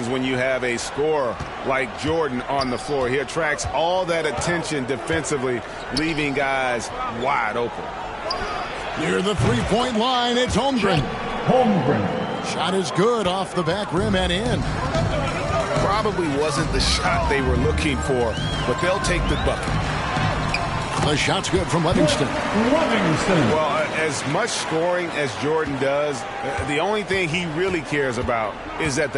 when you have a scorer like Jordan on the floor. He attracts all that attention defensively, leaving guys wide open. Near the three-point line, it's Holmgren. Shot is good off the back rim and in. Probably wasn't the shot they were looking for, but they'll take the bucket. The shot's good from Livingston. Well, as much scoring as Jordan does, the only thing he really cares about is that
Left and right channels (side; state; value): both; identical; correlation 1.00